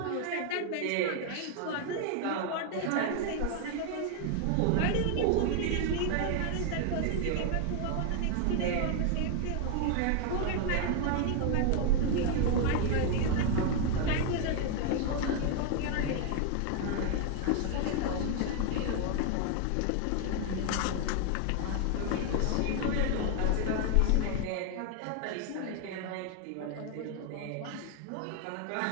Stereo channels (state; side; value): different; both; correlation 0.01